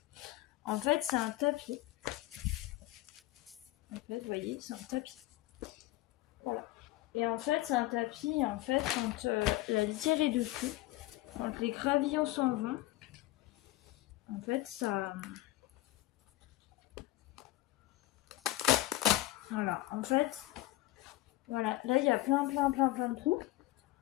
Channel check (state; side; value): quieter; right; 16.8 dB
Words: En fait, c'est un tapis. En fait, vous voyez, c'est un tapis. Voilà. Et en fait, c'est un tapis, en fait, quand la litière est dessus, quand les gravillons s'en vont, en fait, ça... Voilà, en fait, voilà, là, il y a plein de trous.